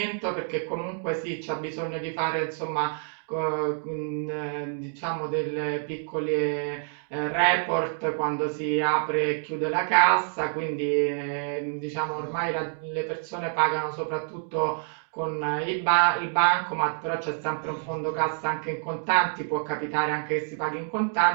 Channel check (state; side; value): silent; left; 59 dB below the other